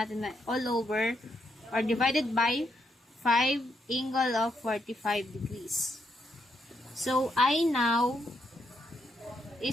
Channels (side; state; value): both; normal; correlation 0.78